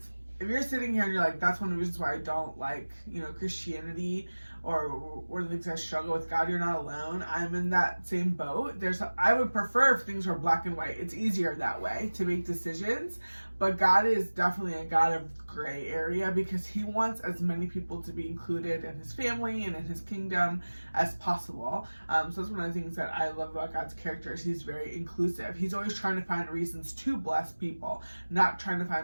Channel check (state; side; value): inverted; both; correlation -1.00